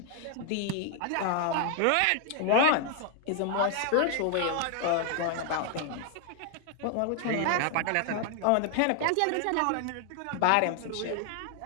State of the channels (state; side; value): different; both; correlation 0.00